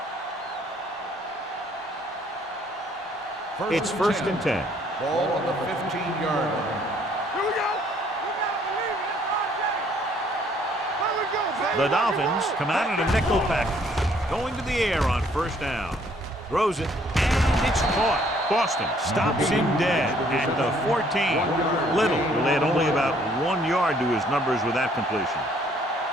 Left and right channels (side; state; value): both; normal; correlation 0.63